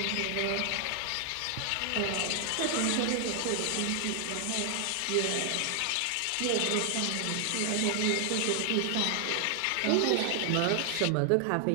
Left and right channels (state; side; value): different; both; correlation 0.00